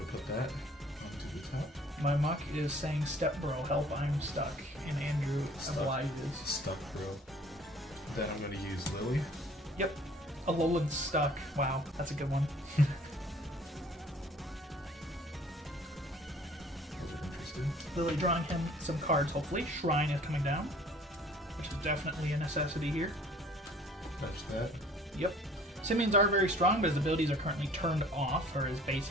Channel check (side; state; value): both; normal; correlation 0.53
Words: put that onto the top. My Muck is saying, "Step bro, help, I'm stuck." And Andrew obliges. Stuck, bro. Then I'm going to use Lily. Yep. Alolan's stuck. Wow, that's a good one. Interested. Lily drawing him some cards, hopefully. Shrine is coming down, which is definitely a necessity here. Touch that. Yep. Simians are very strong, but his abilities are currently turned off, or his